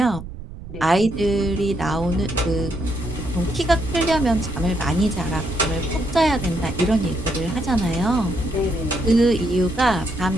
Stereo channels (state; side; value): noise; right; rumble, 13 dB below the sound